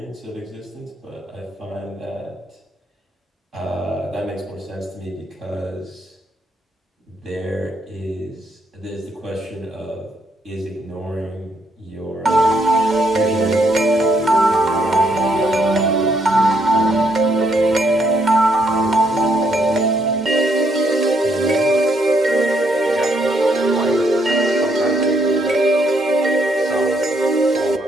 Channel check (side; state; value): both; normal; correlation 0.73